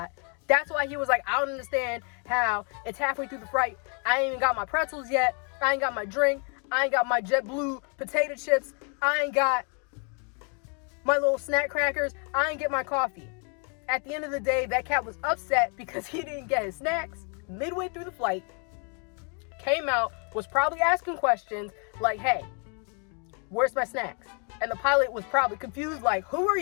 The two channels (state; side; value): quieter; right; 38.5 dB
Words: That's why he was like, I don't understand how it's halfway through the flight. I ain't even got my pretzels yet. I ain't got my drink. I ain't got my JetBlue potato chips. I ain't got my little snack crackers. I ain't get my coffee. At the end of the day, that cat was upset because he didn't get his snacks midway through the flight. Came out, was probably asking questions like, hey, where's my snacks? And the pilot was probably confused, like, who are